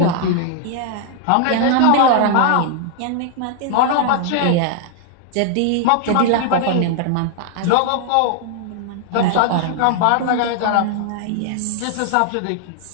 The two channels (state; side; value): different; both; correlation 0.00